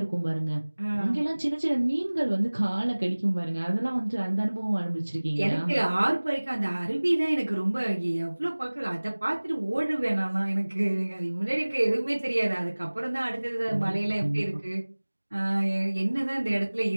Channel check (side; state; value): both; inverted; correlation -1.00